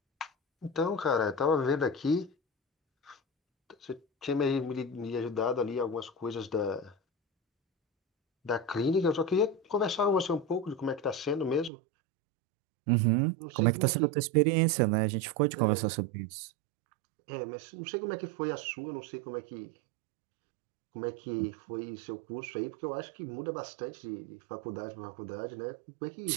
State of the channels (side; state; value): left; drops out; at 11.7 s